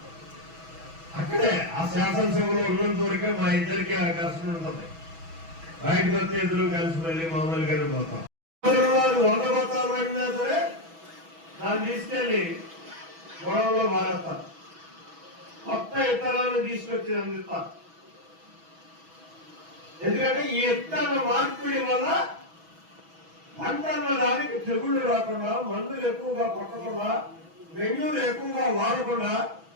అక్కడే ఆ శాసనసభలో ఉన్నంత వరకే మా ఇద్దరికి ఆ ఘర్షణ ఉంటుంది. బయటకు వస్తే ఇద్దరు కలిసి మళ్ళీ మామూలుగానే పోతాం. 100 బత్తాలు పడినా సరే దాన్ని తీసుకెళ్ళి గొడవలో మారేస్తారు. కొత్త ఇత్తనాలను తీసుకొచ్చి అందిస్తారు. ఎందుకంటే ఈ ఇత్తన మార్పిడి వల్ల పంటల దానికి తెగుళ్ళు రాకుండా, మందులు ఎక్కువగా కొట్టకుండా, మెన్యూలు ఎక్కువగా వాడకుండా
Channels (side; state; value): left; late; 6.1 ms